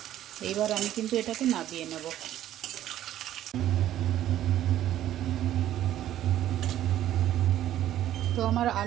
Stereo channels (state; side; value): quieter; left; 12.4 dB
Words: এইবার আমি কিন্তু এটাকে নামিয়ে নেব। তো আমার